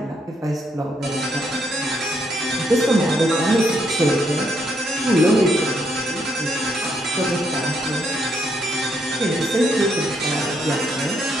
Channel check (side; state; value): both; normal; correlation 0.75